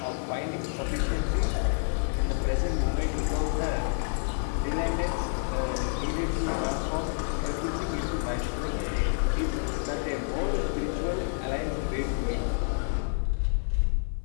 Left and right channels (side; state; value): right; silent; 59 dB below the other